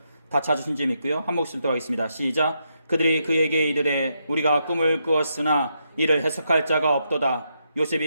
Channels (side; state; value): both; inverted; correlation -0.81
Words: 다 찾으신 줄 믿고요. 한 목소리로 하겠습니다. 시작. 그들이 그에게 이르되 우리가 꿈을 꾸었으나 이를 해석할 자가 없도다.